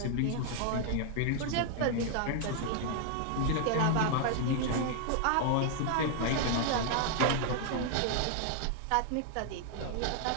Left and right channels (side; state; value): both; different; correlation 0.00